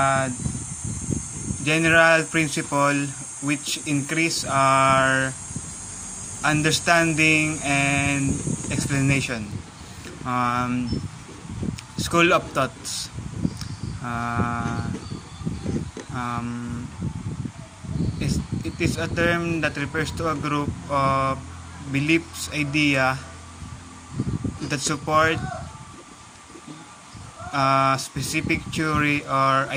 general principle which increase our understanding and explanation. School of thoughts. Uh, um, it is a term that refers to a group of beliefs, idea that support a specific theory or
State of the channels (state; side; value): identical; both; correlation 1.00